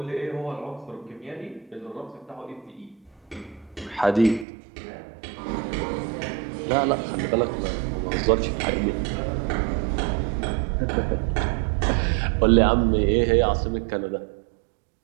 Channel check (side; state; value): left; drops out; at 4.5 s